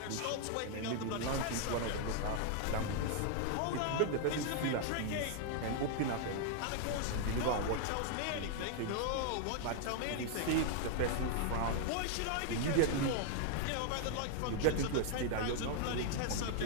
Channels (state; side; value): different; both; correlation 0.00